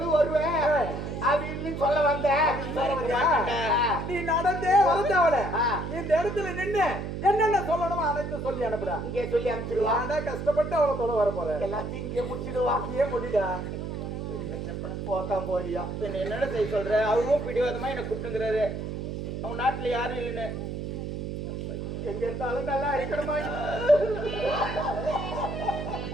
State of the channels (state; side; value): noise; right; hum, 5 dB below the sound